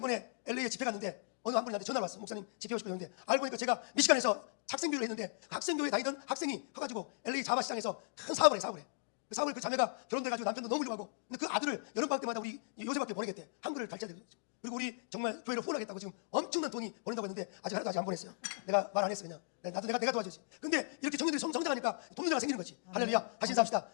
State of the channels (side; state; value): right; silent; digital silence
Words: LA에 집회 갔는데 어느 한 분이 나한테 전화가 왔어. 목사님 집회 오고 싶었는데 알고 보니까 제가 미시간에서 학생교회를 했는데 학생교회 다니던 학생이 커가지고 LA 자바 시장에서 큰 사업을 해. 그 사업을 그 자매가 결혼돼가지고 남편도 너무 훌륭하고, 근데 그 아들을 여름방학 때마다 우리 요새밖에 보내겠대. 한글을 가르쳐야 되는 거지. 그리고 우리 정말 교회를 후원하겠다고 지금 엄청난 돈이 보낸다고 했는데 아직 하나도 안 보냈어요. 내가 말 안 했어. 그냥 나도 내가 도와주지. 근데 이렇게 청년들이 성장하니까 돈 문제가 생기는 거지. 할렐루야. 다시 인사합시다.